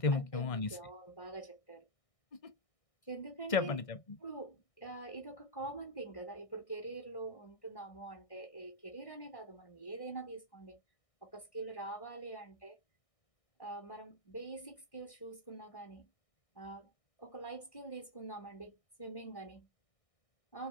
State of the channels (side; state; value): right; late; 1.6 ms